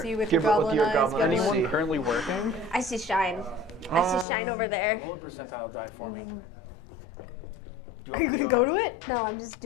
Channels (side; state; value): right; drops out; at 4.2 s